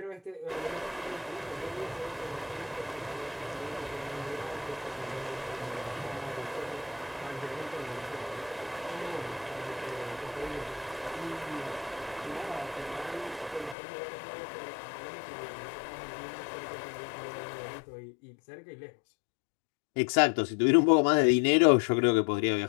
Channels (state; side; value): drops out; right; at 13.8 s